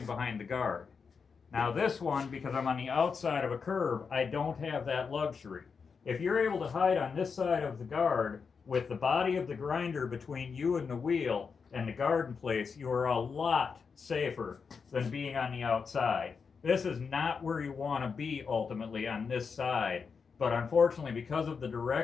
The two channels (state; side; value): quieter; right; 5.6 dB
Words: behind the guard. Now this one, because I'm on the outside of a curve, I don't have that luxury. If you're able to hide on this side of the guard with the body of the grinder between you and the wheel and the guard in place, you are a lot safer than being on the outside. This is not where you want to be ultimately on this side. But unfortunately, because of the